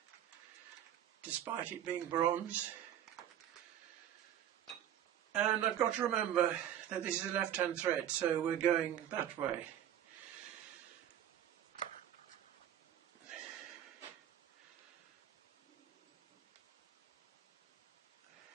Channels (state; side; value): quieter; left; 10.8 dB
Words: despite it being bronze. And I've got to remember that this is a left-hand thread, so we're going that way.